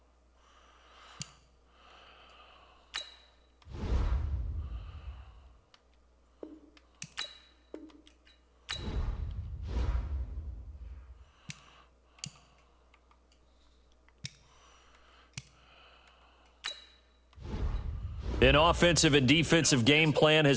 An offensive and defensive game plan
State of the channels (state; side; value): identical; both; correlation 1.00